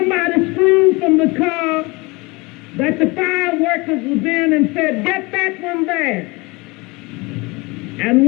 screamed from the car that the fire workers was in and said, "Get that one there." And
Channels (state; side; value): quieter; right; 25.3 dB